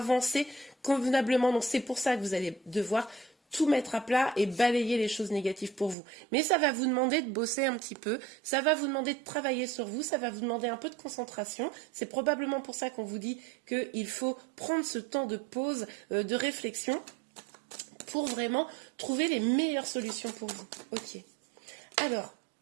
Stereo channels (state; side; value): drops out; left; at 6.0 s